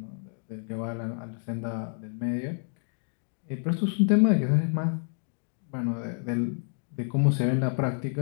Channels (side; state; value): right; silent; 59 dB below the other